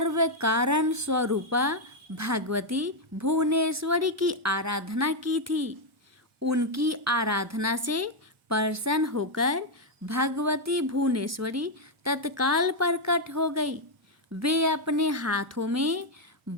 कारण स्वरूपा भगवती भुवनेश्वरी की आराधना की थी। उनकी आराधना से प्रसन्न होकर भगवती भुवनेश्वरी तत्काल प्रकट हो गई। वे अपने हाथों में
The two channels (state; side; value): normal; both; correlation 0.01